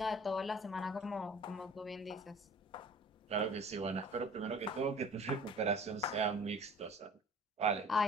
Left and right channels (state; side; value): normal; both; correlation 0.47